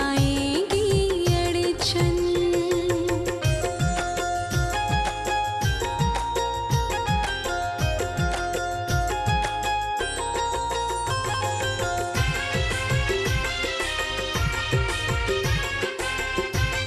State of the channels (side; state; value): both; identical; correlation 1.00